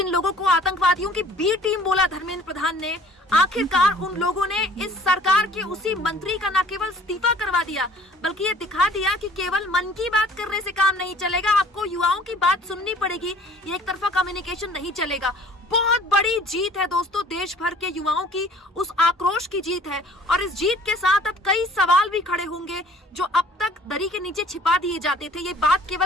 लोगों को आतंकवादियों की बी टीम बोला धर्मेंद्र प्रधान ने, आखिरकार उन लोगों ने इस सरकार के उसी मंत्री का न केवल इस्तीफा करवा दिया, बल्कि ये दिखा दिया कि केवल मन की बात करने से काम नहीं चलेगा, आपको युवाओं की बात सुननी पड़ेगी। ये एक तरफा कम्युनिकेशन नहीं चलेगा। बहुत बड़ी जीत है दोस्तों, देश भर के युवाओं की उस आक्रोश की जीत है। और इस जीत के साथ अब कई सवाल भी खड़े होंगे जो अब तक दरी के नीचे छिपा दिए जाते थे। ये बात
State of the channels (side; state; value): both; normal; correlation 0.53